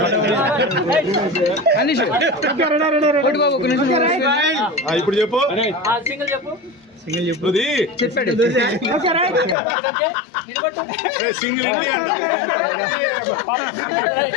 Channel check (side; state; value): right; drops out; at 9.6 s